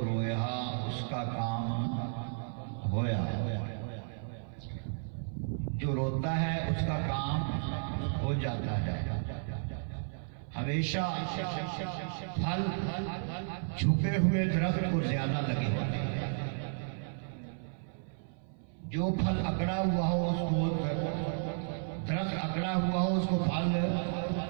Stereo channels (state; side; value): silent; left; 56 dB below the other